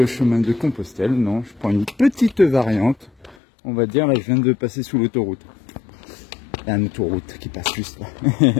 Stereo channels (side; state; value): right; drops out; at 3.4 s